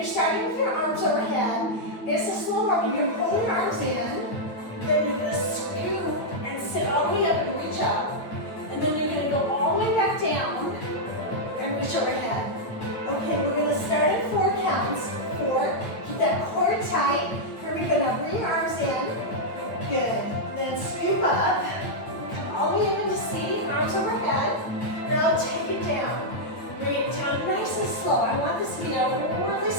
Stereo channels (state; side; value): late; right; 8.8 ms